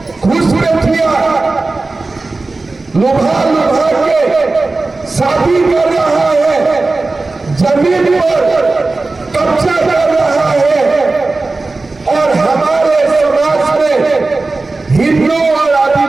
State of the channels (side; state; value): left; quieter; 3.5 dB